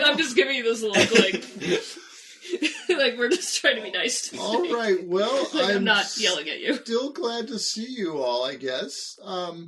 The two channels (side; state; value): both; identical; correlation 1.00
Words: I'm just giving you this look like, like we're just trying to be nice. All right, well, Like, I'm not yelling at you. Still glad to see you all, I guess.